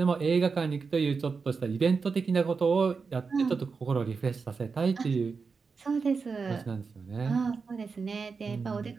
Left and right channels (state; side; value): quieter; left; 5.0 dB